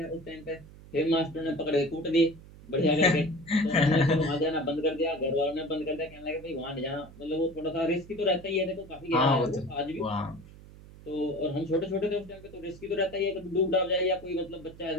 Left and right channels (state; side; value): noise; right; hum, 19 dB below the sound